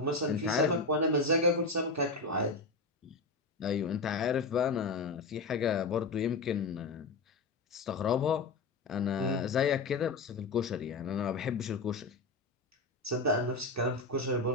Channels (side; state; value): right; quieter; 3.5 dB